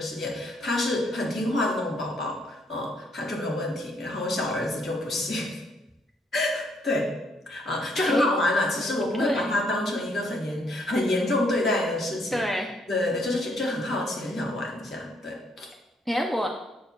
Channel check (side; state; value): both; normal; correlation 0.69